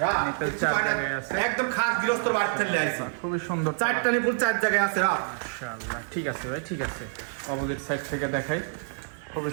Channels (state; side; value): silent; left; digital silence